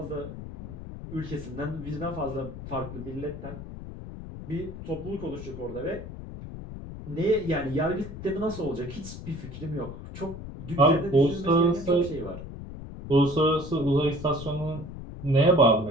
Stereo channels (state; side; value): noise; left; rumble, 11 dB below the sound